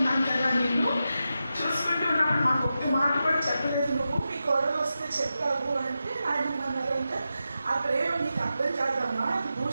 కదా, నేను చూసుకుంటూ ఉన్నప్పుడు మాకు ఒక్క మాట కూడా చెప్పలేదు, నువ్వు మీ కోడలు వస్తే చెప్పావు అంటే ఆయన అన్నారంటే ఆ ప్రేమ నీకు అర్థం కాదమ్మా, అది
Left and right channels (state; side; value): inverted; both; correlation -0.90